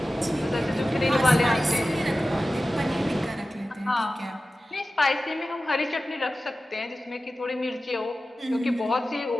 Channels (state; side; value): normal; both; correlation 0.95